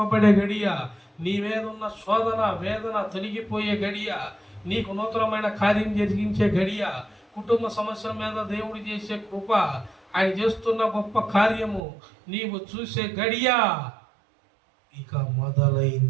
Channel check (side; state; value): left; drops out; at 11.8 s